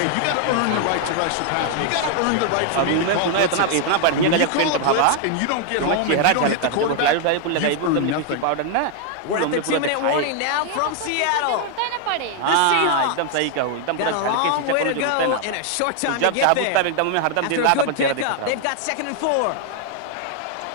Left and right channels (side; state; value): both; different; correlation 0.00